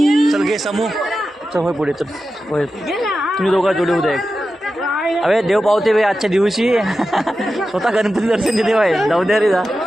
चल घे समूह चल होय पुढे चल होय तुम्ही दोघा जोडी उद्या एक. अरे देव पावते बे आजच्या दिवशी स्वतः गणपती दर्शन देते बाय जाऊ द्या रे जा.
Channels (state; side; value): normal; both; correlation 0.92